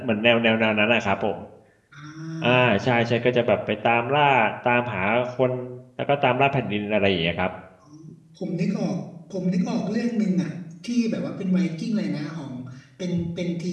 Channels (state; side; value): identical; both; correlation 1.00